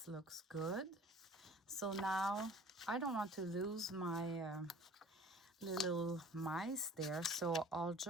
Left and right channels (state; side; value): normal; both; correlation 0.47